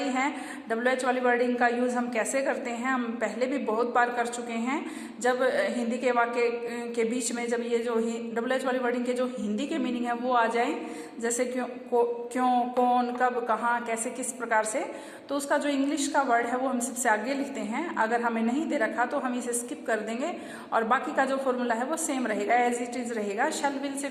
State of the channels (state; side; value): identical; both; correlation 1.00